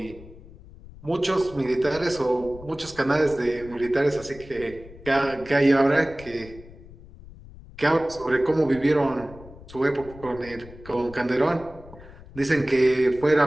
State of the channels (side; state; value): left; noise; rumble, 19 dB below the sound